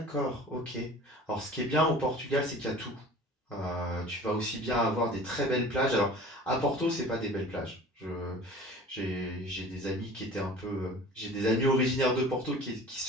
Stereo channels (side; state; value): both; normal; correlation 0.43